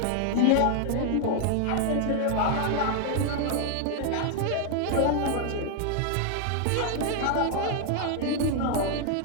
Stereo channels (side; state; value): both; different; correlation 0.00